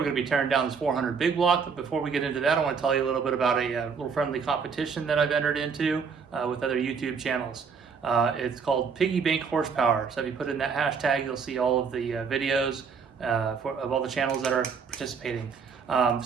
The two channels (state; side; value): quieter; left; 5.8 dB